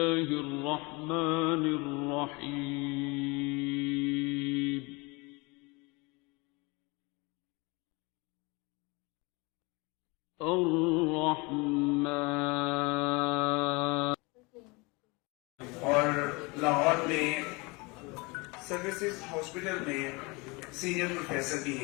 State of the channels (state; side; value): quieter; right; 26.8 dB